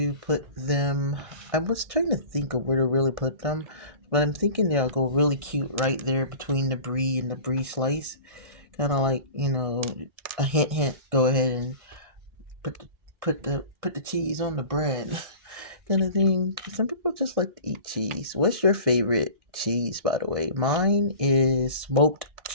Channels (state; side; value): late; left; 1.5 ms